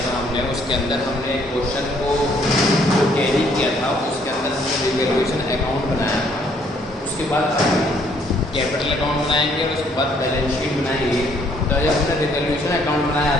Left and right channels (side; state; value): both; normal; correlation 0.65